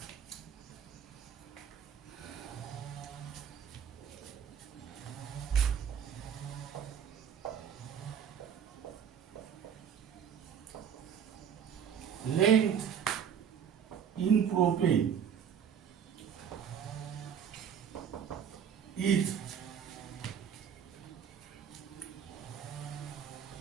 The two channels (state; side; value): quieter; left; 8.1 dB